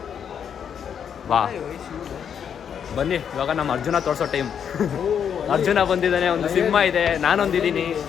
ಬಾ ಬನ್ನಿ, ಇವಾಗ ನಮ್ಮ ಅರ್ಜುನ ತೋರಿಸೋ ಟೈಮ್. ಅರ್ಜುನ ಬಂದಿದ್ದಾನೆ, ಒಂದು ಸಿಂಹ ಇದೆ, ನಾನೊಂದಿದ್ದೀನಿ,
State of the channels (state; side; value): quieter; right; 8.0 dB